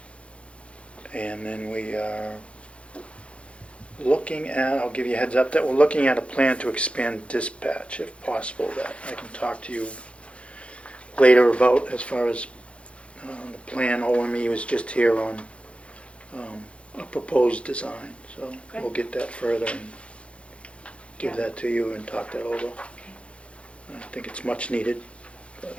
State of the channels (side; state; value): right; late; 0.060 ms